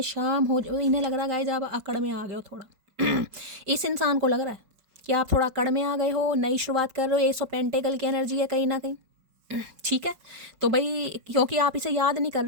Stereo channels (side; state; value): left; late; 5.3 ms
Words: शाम हो। इन्हें लग रहा है गाइस आप अकड़ में आ गए हो थोड़ा। इस इंसान को लग रहा है कि आप थोड़ा अकड़ में आ गए हो, नई शुरुआत कर रहे हो। 100 पेंटेकल की एनर्जी है कहीं ना कहीं, ठीक है। तो भाई क्योंकि आप इसे याद नहीं कर